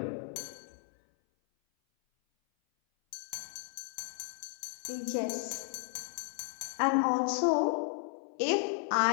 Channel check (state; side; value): silent; right; 55 dB below the other